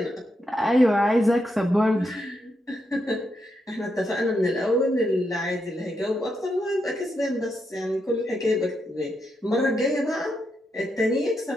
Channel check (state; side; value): normal; both; correlation 0.82